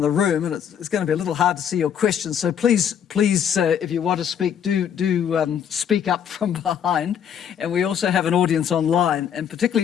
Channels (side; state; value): right; quieter; 8.5 dB